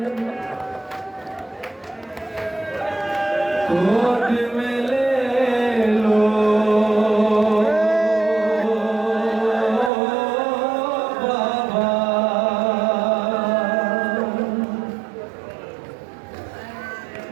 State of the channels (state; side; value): drops out; left; at 9.9 s